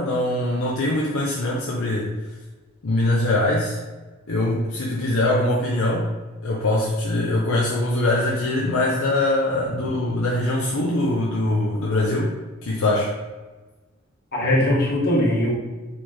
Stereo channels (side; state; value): both; normal; correlation 0.44